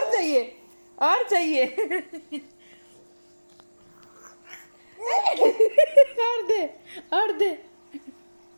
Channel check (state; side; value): inverted; both; correlation -1.00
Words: चाहिए? और चाहिए? और दे, और दे,